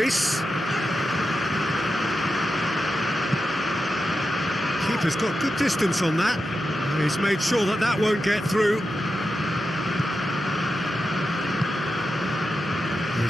Keeper's got good distance on that. He's made sure that that won't get through. They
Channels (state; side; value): normal; both; correlation 0.89